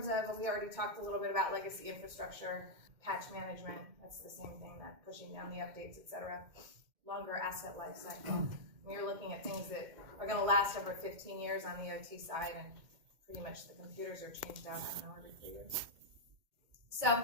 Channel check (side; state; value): left; late; 2.1 ms